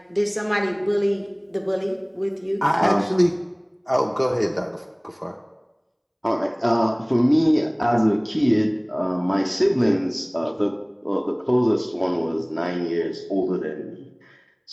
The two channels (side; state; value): both; identical; correlation 1.00